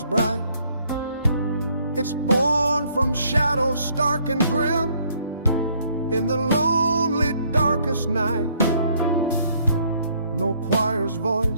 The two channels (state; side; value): inverted; both; correlation -0.66